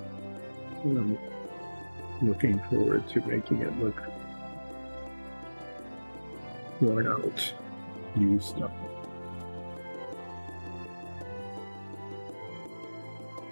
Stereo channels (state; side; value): inverted; both; correlation -1.00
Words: And I'm looking forward to making it look worn out, used up.